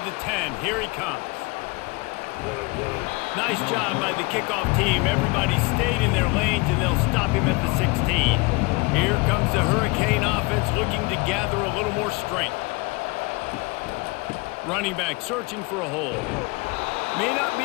the 10, here he comes. Nice job by the kickoff team. Everybody stayed in their lanes, and they'll stop him at the 16. Here comes the Hurricane offense looking to gather a little more strength. Running back searching for a hole. May not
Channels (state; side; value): quieter; right; 26.0 dB